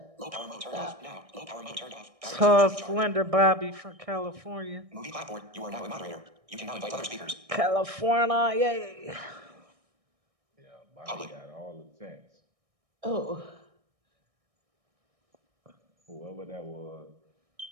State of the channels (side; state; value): left; late; 1.6 ms